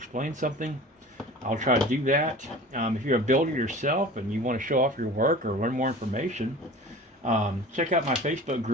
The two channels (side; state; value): both; normal; correlation 0.40